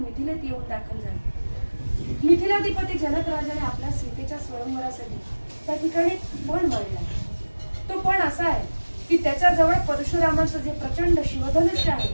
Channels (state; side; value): inverted; both; correlation -1.00